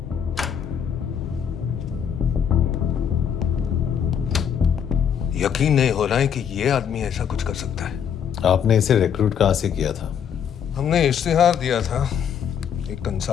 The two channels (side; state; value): right; quieter; 8.2 dB